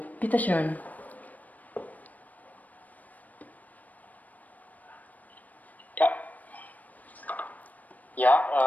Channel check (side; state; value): right; late; 0.077 ms